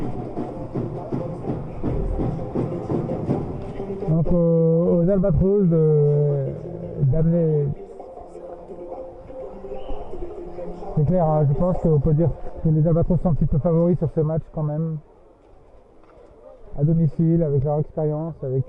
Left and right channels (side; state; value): both; identical; correlation 1.00